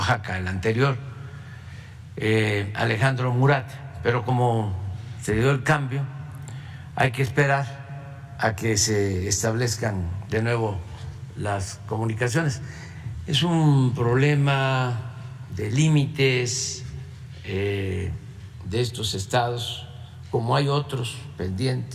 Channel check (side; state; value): both; identical; correlation 1.00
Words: el anterior, Alejandro Murat, pero como se dio el cambio, hay que esperar a que se establezcan de nuevo las comunicaciones. Es un problema de límites de estos estados, como hay otros